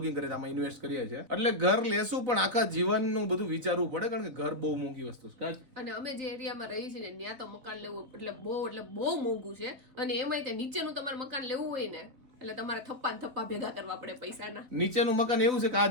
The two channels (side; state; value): left; late; 4.0 ms